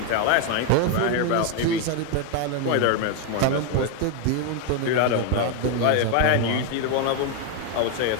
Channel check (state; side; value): different; both; correlation 0.01